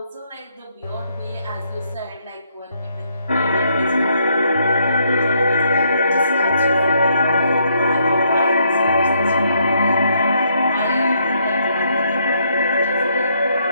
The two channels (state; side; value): inverted; both; correlation -0.73